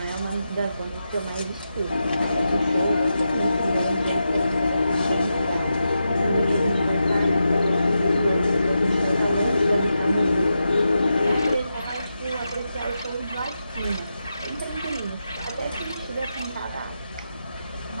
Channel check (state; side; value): inverted; both; correlation -0.88